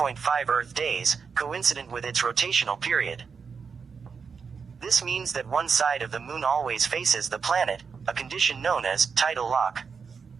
Earth days, coincident with its rotational period. This means that one side of the moon always faces the planet, a condition known as tidal lock.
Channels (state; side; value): quieter; left; 5.8 dB